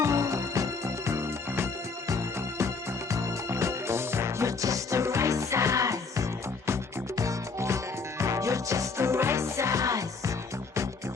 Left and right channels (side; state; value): right; quieter; 4.5 dB